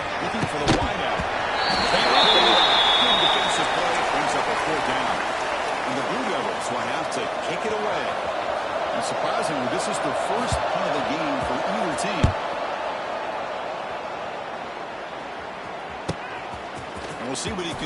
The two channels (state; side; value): identical; both; correlation 1.00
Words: for the wideout. Good defensive play brings up a 4th down. And the Blue Devils will have to kick it away. And surprisingly, this is the first punt of the game for either team. And we'll see what he